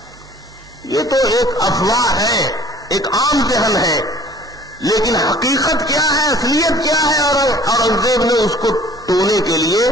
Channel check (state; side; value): normal; both; correlation 0.51